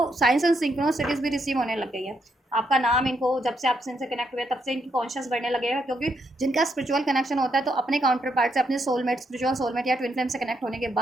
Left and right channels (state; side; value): normal; both; correlation 0.78